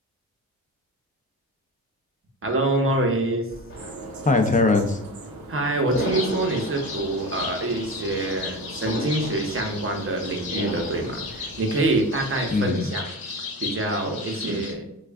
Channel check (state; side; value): normal; both; correlation 0.28